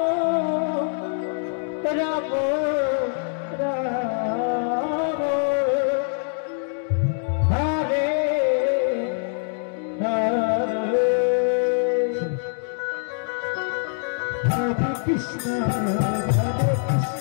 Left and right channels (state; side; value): silent; right; digital silence